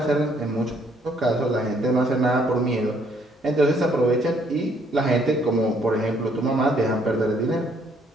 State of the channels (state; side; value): normal; both; correlation 0.67